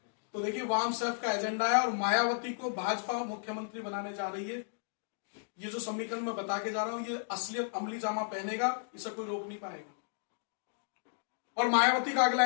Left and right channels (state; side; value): silent; right; digital silence